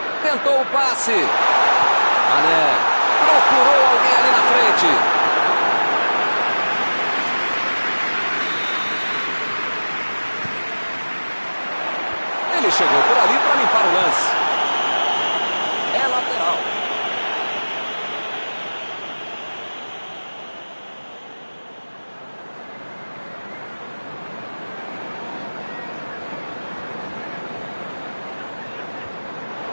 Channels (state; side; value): inverted; both; correlation -1.00